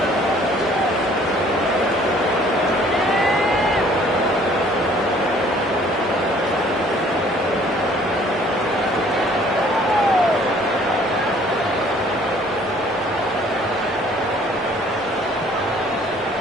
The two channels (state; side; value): normal; both; correlation 0.57